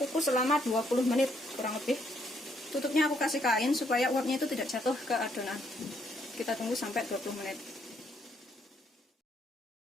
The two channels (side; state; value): both; normal; correlation 0.72